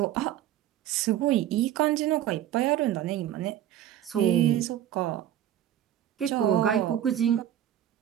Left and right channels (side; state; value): left; quieter; 11.6 dB